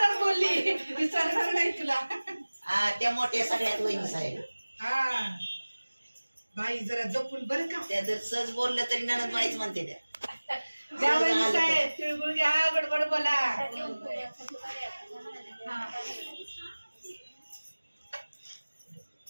बोलली विचारणार नाही तुला. हा त्या मोठ्या सगळ्यात वहिनी साहेब. हा बाई जरा जपून बरं का. त्या जर सहज बोललं तरी ननद बाईच म्हणते त्या. द्या वहिनी साहेब तिळगुळ घ्या, गडबड बोला.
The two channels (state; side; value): inverted; both; correlation -1.00